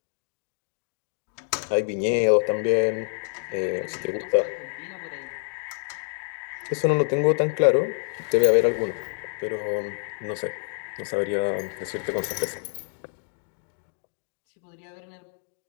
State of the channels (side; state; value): right; silent; 60 dB below the other